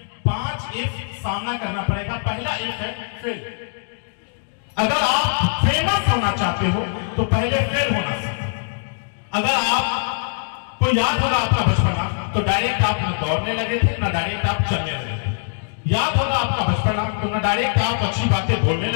एफ सामना करना पड़ेगा। पहला एफ है फेल। अगर आप फेमस होना चाहते हो तो पहले फेल होना सीखो। अगर आपको याद होगा आपका बचपना, तो डायरेक्ट आप न दौड़ने लगे थे ना डायरेक्ट आप चलने लगे थे। याद होगा आपका बचपना, तो ना डायरेक्ट आप अच्छी बातें बोलने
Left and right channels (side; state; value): right; silent; digital silence